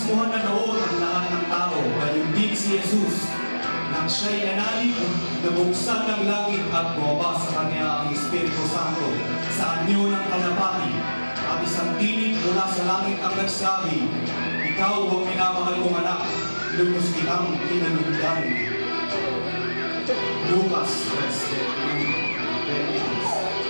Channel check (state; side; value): inverted; both; correlation -1.00